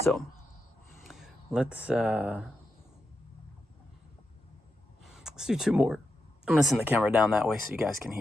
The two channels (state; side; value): normal; both; correlation 0.86